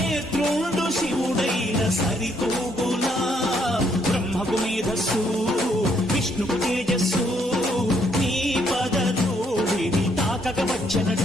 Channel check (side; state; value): both; normal; correlation 0.71